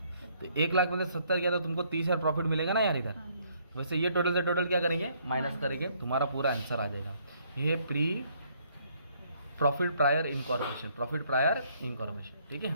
तो 1 लाख में से 70 गया तो तुमको 30,000 प्रॉफिट मिलेगा ना यार इधर। वैसे ये टोटल से टोटल क्या करेंगे, माइनस करेंगे, तुम्हारा पूरा आंसर आ जाएगा। ये pre profit prior incorporation, profit prior incorporation, ठीक है।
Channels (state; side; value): inverted; both; correlation -0.67